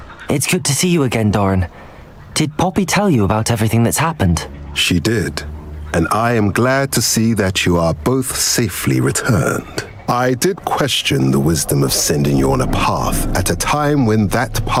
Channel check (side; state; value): both; identical; correlation 1.00